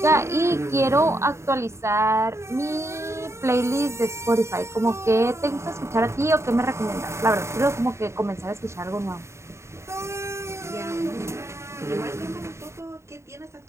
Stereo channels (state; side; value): late; left; 0.13 ms